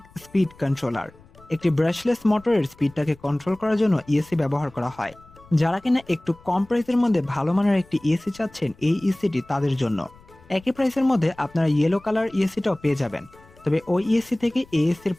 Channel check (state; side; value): noise; left; rumble, 26 dB below the sound